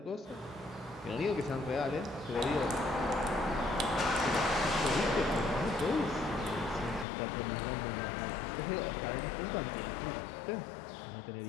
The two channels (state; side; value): drops out; right; at 7.1 s